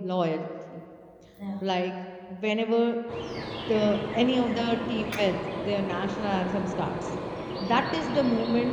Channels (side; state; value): both; identical; correlation 1.00